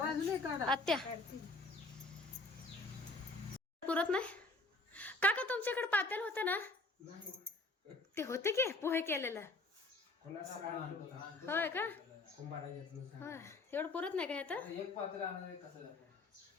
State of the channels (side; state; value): right; quieter; 3.1 dB